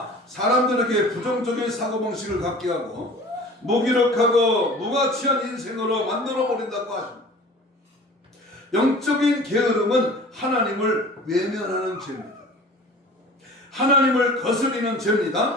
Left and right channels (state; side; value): normal; both; correlation 0.43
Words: 사람들에게 부정적인 사고방식을 갖게 하고 무기력하고 무가치한 인생으로 만들어버린다고 하십니다. 영적인 게으름은 하나님을 외면하는 죄입니다. 하나님을 거스리는